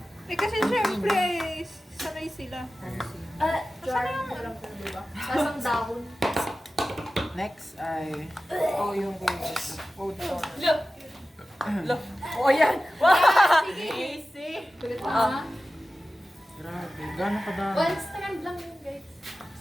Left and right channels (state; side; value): normal; both; correlation 0.95